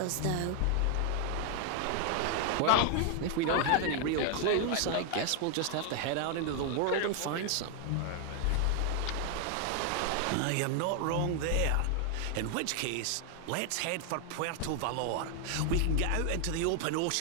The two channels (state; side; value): different; both; correlation 0.00